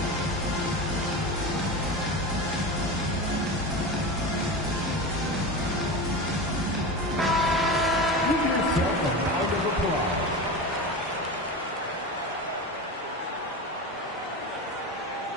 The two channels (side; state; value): both; normal; correlation 0.25